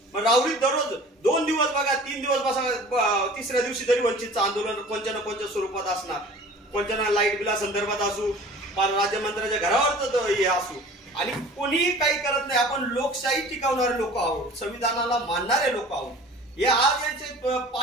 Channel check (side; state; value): both; normal; correlation 0.44